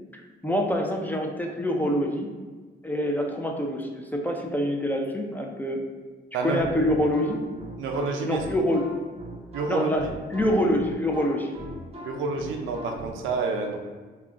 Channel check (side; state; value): both; normal; correlation 0.55